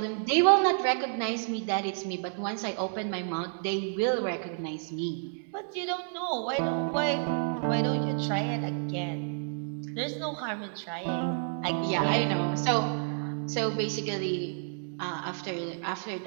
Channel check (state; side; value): silent; left; digital silence